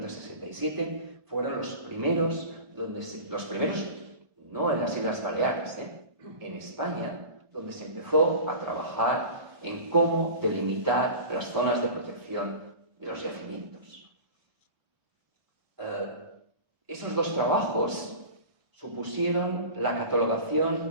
fueron los primeros, no en las Islas Baleares, en España, donde se empezó a trabajar en cómo delimitar las zonas de protección de los yacimientos. Esos dos trabajos supusieron la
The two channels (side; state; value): left; late; 1.5 ms